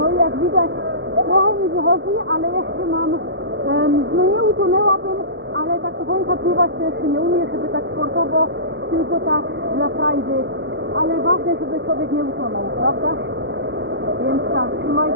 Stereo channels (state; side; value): late; left; 0.55 ms